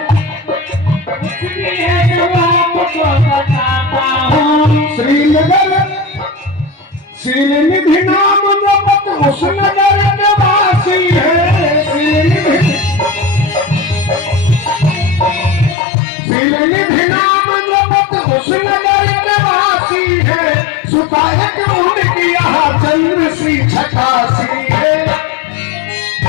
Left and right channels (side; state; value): right; drops out; at 15.8 s